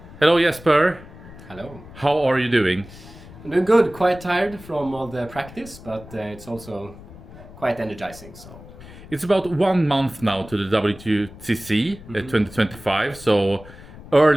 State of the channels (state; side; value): noise; left; rumble, 18 dB below the sound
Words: Hello, Jesper. Hello. How are you doing? I'm doing good. Quite tired from all the practice, but it's also quite energizing. So It's about 1 month now to the WTC 2025, so